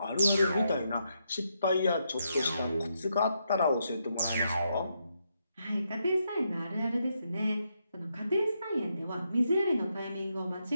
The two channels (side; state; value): both; inverted; correlation -0.80